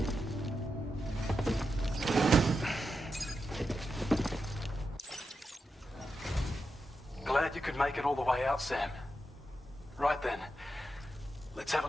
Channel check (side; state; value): both; normal; correlation 0.87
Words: Glad you could make it all the way out, Sam. Right then, let's have